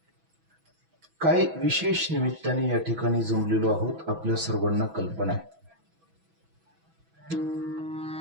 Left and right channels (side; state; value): left; late; 6.1 ms